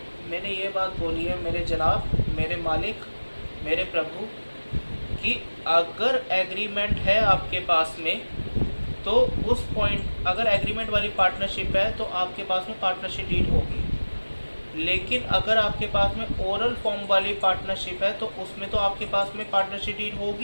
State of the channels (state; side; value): inverted; both; correlation -1.00